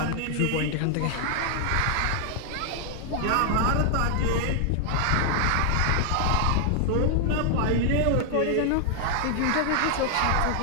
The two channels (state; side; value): different; both; correlation 0.00